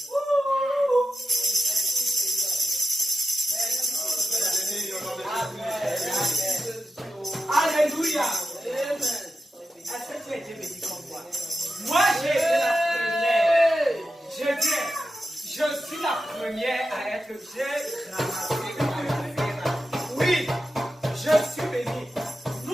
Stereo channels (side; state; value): both; normal; correlation 0.91